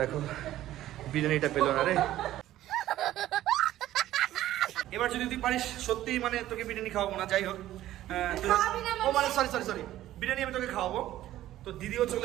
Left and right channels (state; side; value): quieter; left; 13.9 dB